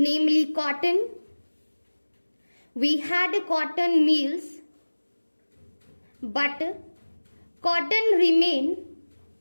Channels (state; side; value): inverted; both; correlation -1.00